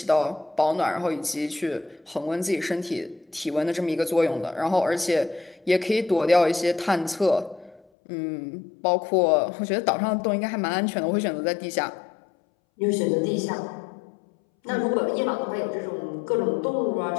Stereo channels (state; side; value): drops out; right; at 7.8 s